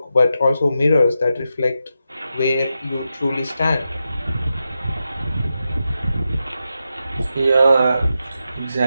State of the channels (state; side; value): inverted; both; correlation -0.88